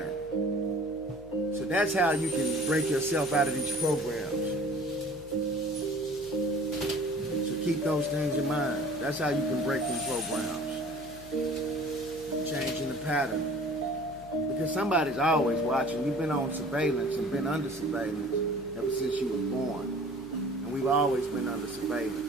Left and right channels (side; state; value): left; noise; hum, 19 dB below the sound